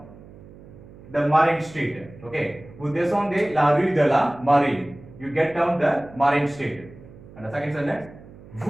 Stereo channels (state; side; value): noise; right; hum, 20 dB below the sound